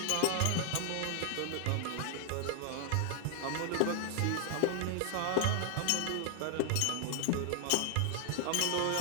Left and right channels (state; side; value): different; both; correlation 0.00